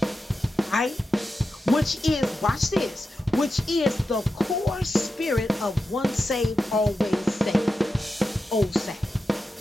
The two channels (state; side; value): normal; both; correlation 0.90